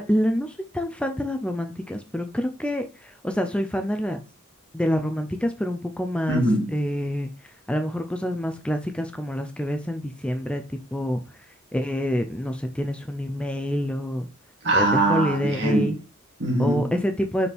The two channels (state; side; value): normal; both; correlation 0.74